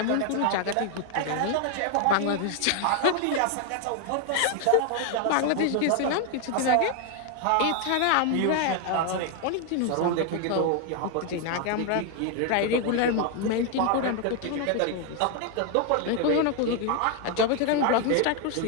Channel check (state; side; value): different; both; correlation 0.00